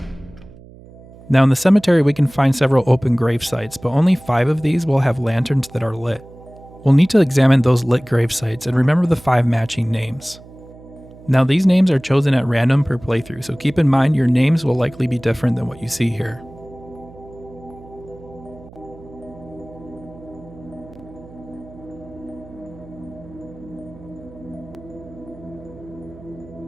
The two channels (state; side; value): noise; right; hum, 20 dB below the sound